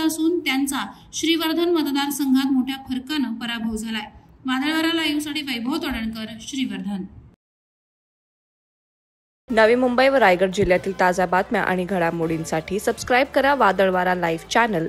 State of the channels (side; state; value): both; identical; correlation 1.00